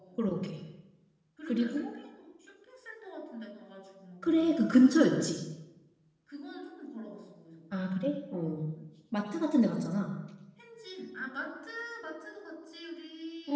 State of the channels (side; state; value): both; identical; correlation 1.00